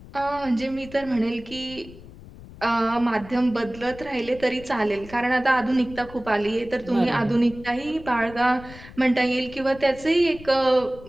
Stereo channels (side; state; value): left; noise; rumble, 18 dB below the sound